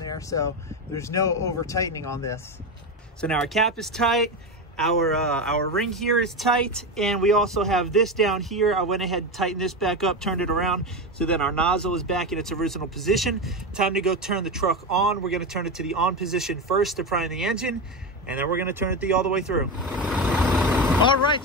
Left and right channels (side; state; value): both; normal; correlation 0.17